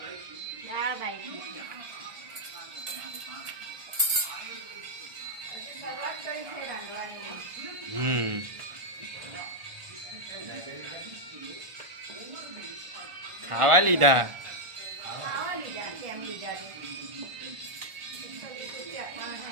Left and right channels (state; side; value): late; left; 1.4 ms